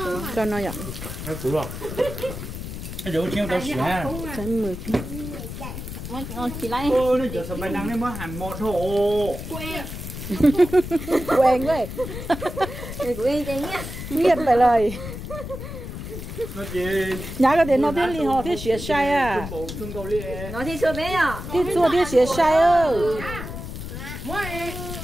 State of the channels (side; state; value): left; noise; rumble, 8 dB below the sound